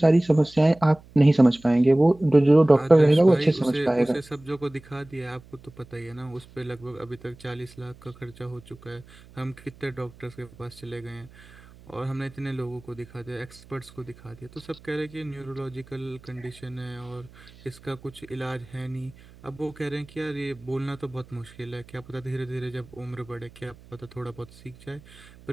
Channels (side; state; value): right; noise; hum, 23 dB below the sound